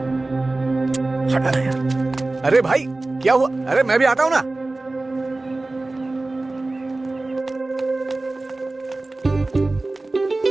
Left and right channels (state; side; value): quieter; left; 3.1 dB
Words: अरे भाई, क्या हुआ? अरे मैं भी आता हूं ना।